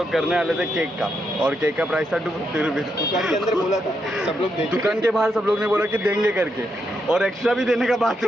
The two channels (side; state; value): both; normal; correlation 0.81